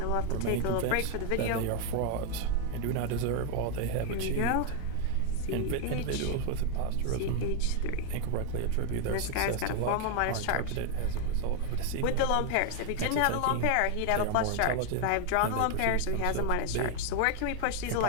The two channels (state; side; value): different; both; correlation 0.01